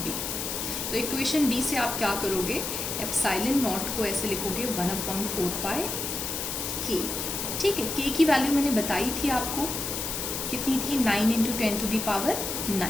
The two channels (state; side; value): noise; left; hiss, 3 dB below the sound